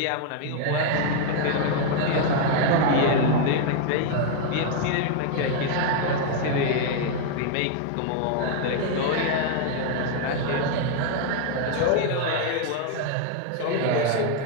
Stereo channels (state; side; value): different; both; correlation 0.00